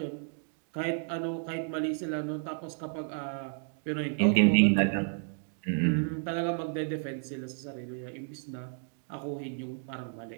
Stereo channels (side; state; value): left; silent; 57 dB below the other